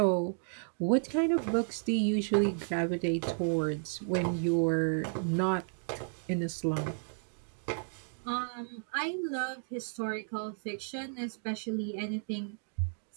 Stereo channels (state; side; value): silent; left; digital silence